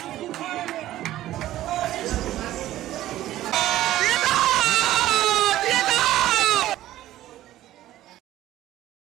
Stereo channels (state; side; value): quieter; left; 14.2 dB